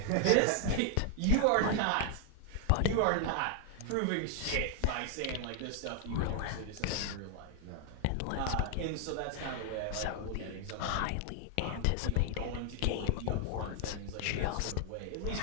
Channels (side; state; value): both; different; correlation 0.00